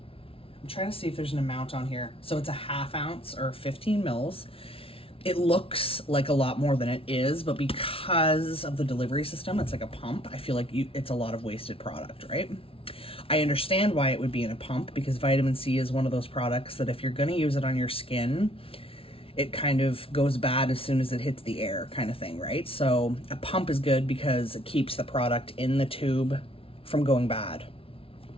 trying to see if there's an amount on here. So it's a ½ ounce or 15 mils. It looks like a lot more than it is, but because of the delivery system, it's like a pump. I feel like it's a lot of wasted product, right? I understand why it would be in a pump because vitamin C is one of those products that if you're going to use it on your skin, it kind of goes bad as soon as it hits the air kind of thing, right? So a pump is good because it keeps the product in the tube from going bad.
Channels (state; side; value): late; right; 0.26 ms